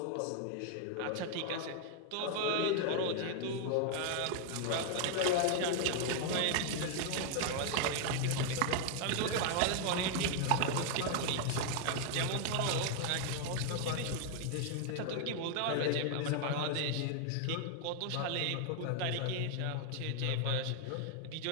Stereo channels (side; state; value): both; different; correlation 0.00